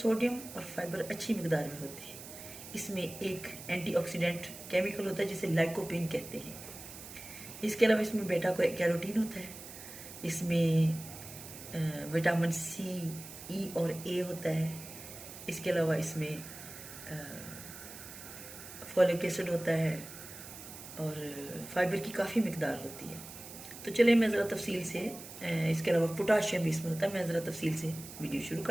और फाइबर अच्छी मिकदार में होते हैं। इसमें एक एंटीऑक्सीडेंट केमिकल होता है जिसे लाइकोपेन कहते हैं। इसके अलावा इसमें बेटा कैरोटीन होता है। इसमें विटामिन सी, ई और ए होता है। इसके अलावा इसमें फॉलिक एसिड होता है और फाइबर की काफ़ी मिकदार होती है। तो चलिए मैं ज़रा तफसील से इसके अलावा पोटाशियम भी इसमें होता है, मैं ज़रा तफसील से वीडियो शुरू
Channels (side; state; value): right; noise; hiss, 13 dB below the sound